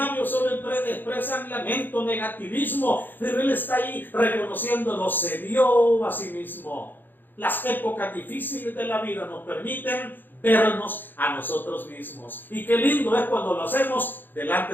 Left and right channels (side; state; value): right; late; 0.092 ms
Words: solo expresan lamento, negativismo, pero él está ahí reconociéndolo, se vio a sí mismo. Las épocas difíciles de la vida nos permiten vernos a nosotros mismos, y qué lindo es cuando lo hacemos